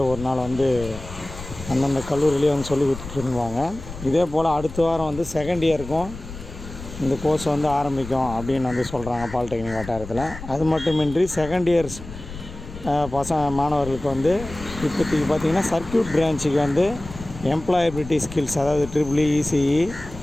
ஒரு நாள் அந்தந்த கல்லூரியிலே சொல்லி கொடுத்துட்டுருவாங்க. இதே போல் அடுத்த வாரம் செகண்ட் இயருக்கும் இந்த கோர்ஸ் ஆரம்பிக்கும் அப்படின்னு சொல்கிறாங்க பாலிடெக்னிக் வட்டாரத்தில். அது மட்டுமின்றி செகண்ட் இயர்ஸ் மாணவர்களுக்கு இப்போதைக்கு பார்த்திங்கன்னா சர்க்யூட் பிரான்ச்சுக்கு எம்ப்ளாயபிலிட்டி ஸ்கில்ஸ், அதாவது ட்ரிபிள் இசிஇ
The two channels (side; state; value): left; noise; rumble, 13 dB below the sound